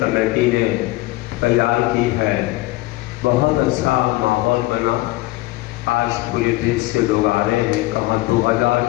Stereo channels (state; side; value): quieter; right; 19.0 dB